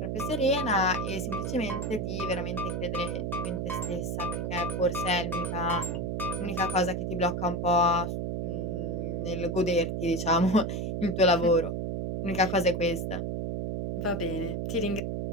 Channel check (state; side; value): noise; right; hum, 2 dB below the sound